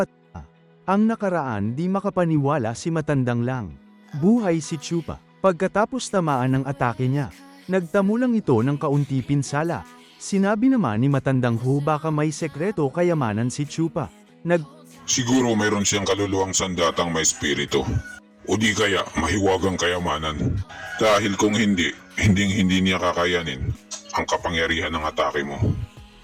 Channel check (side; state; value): both; identical; correlation 1.00